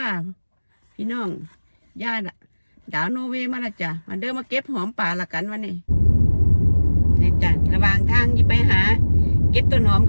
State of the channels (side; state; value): both; inverted; correlation -1.00